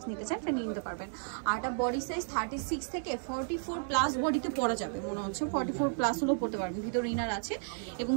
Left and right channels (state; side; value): silent; left; 56 dB below the other